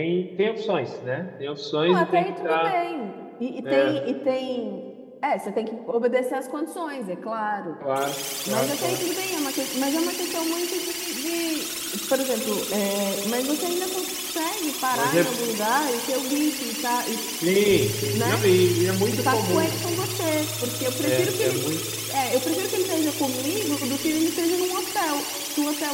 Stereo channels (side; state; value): both; identical; correlation 1.00